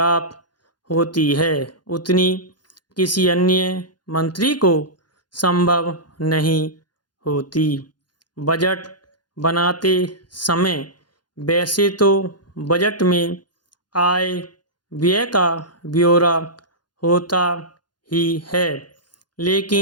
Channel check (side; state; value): right; late; 0.70 ms